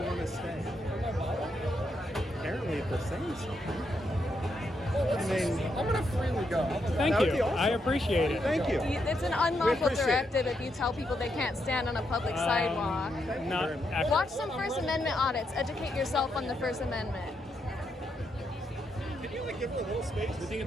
want to stay? Apparently, if they're saying something. I mean, I'm gonna freely go. Thank That would you. be awesome. I appreciate it. Thank you. It's an We unlawful appreciate directive if you tell people they can't stand on a public sidewalk. Not actually. Watch some First Amendment audits. Educate yourself on the First Amendment. Can you like give her a little space?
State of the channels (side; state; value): both; normal; correlation 0.80